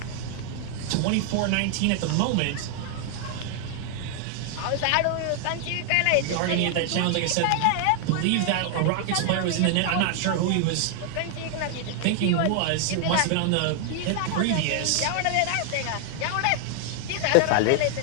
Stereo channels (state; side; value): different; both; correlation 0.00